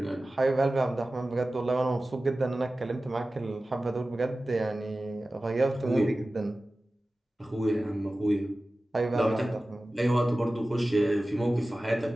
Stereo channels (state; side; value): normal; both; correlation 0.96